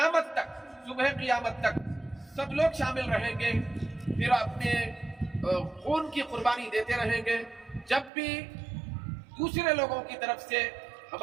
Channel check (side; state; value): left; drops out; at 8.1 s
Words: تک، صبح قیامت تک سب لوگ شامل رہیں گے، پھر اپنے خون کی قربانی دیتے رہیں گے۔ جب بھی دوسرے لوگوں کی طرف سے